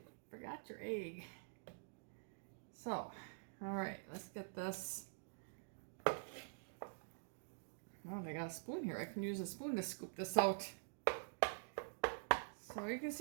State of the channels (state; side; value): silent; left; digital silence